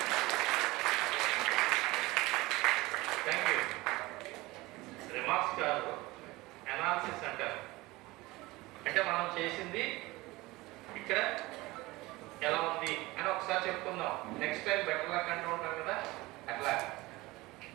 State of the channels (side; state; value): left; quieter; 20.7 dB